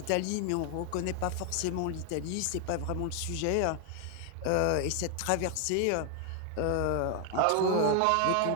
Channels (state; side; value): different; both; correlation 0.00